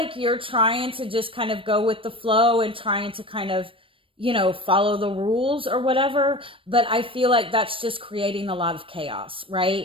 you're trying to just kind of go with the flow and trying to kind of, follow the rules or whatever. But I feel like that's just creating a lot of chaos,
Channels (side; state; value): left; late; 0.25 ms